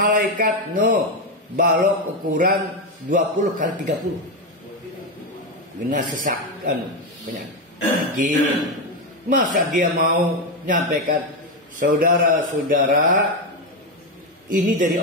Nuh, balok ukuran 20 kali 30. Benar sesakan banyak. Gini. Masa dia mau nyampaikan, saudara-saudara, ini dari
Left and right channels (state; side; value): normal; both; correlation 0.09